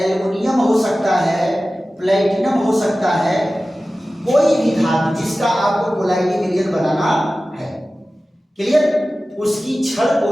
हो सकता है, प्लेटिनम हो सकता है। कोई भी धातु जिसका आपको कोलाइडी विलयन बनाना है। क्लियर? उसकी छड़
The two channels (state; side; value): normal; both; correlation 0.96